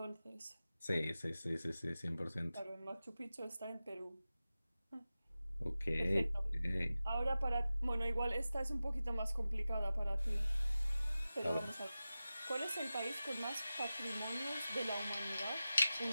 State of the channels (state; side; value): inverted; both; correlation -0.95